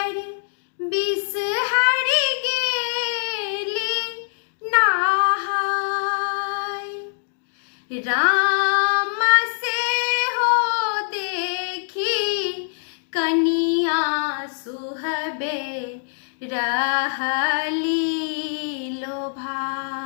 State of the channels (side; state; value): right; silent; digital silence